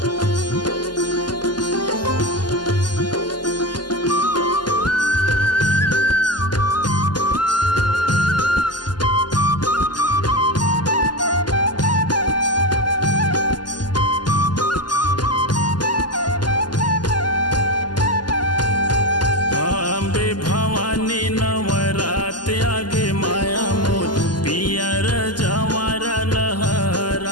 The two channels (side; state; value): right; late; 0.71 ms